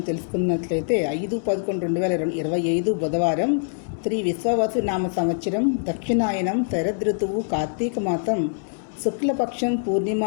తెలుసుకున్నట్లయితే 5/11/2025 బుధవారం, శ్రీ విశ్వావసు నామ సంవత్సరం, దక్షిణాయనం, శరదృతువు, కార్తీక మాసం, శుక్లపక్షం, పూర్ణిమ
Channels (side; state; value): right; silent; 63 dB below the other